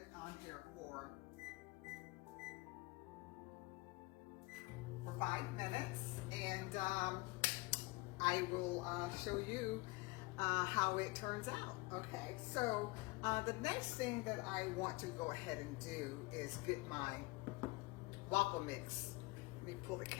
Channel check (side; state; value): right; quieter; 23.9 dB